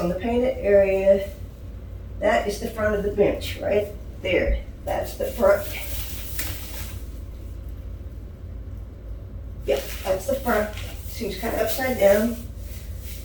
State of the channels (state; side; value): identical; both; correlation 1.00